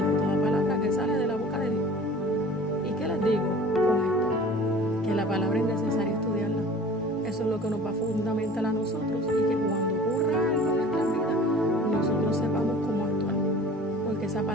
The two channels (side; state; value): both; normal; correlation 0.44